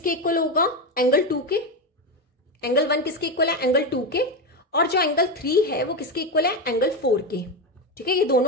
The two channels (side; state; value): both; normal; correlation 0.14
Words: इक्वल होगा, एंगल 2 के। एंगल 1 किसके इक्वल है, एंगल 2 के, और जो एंगल 3 है वो किसके इक्वल है, एंगल 4 के। ठीक है, ये